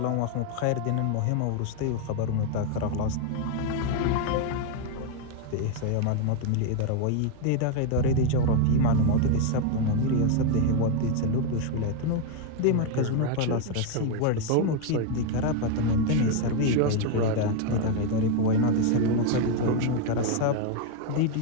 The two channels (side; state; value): both; different; correlation 0.01